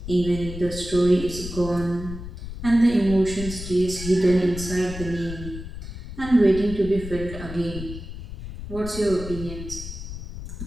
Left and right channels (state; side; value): noise; left; rumble, 9 dB below the sound